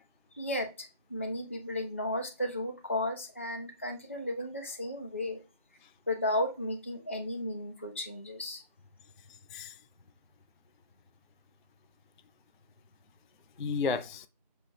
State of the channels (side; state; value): both; inverted; correlation -0.40